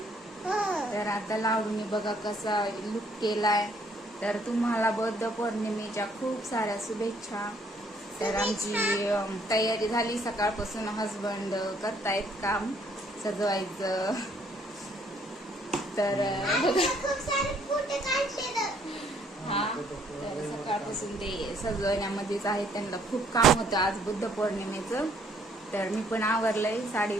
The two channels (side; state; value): both; normal; correlation 0.65